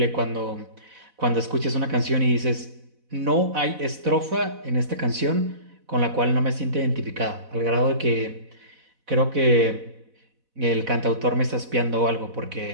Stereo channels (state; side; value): late; left; 4.0 ms